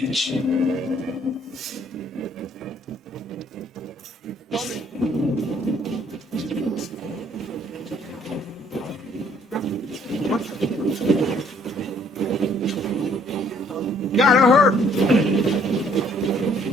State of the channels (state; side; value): normal; both; correlation 0.62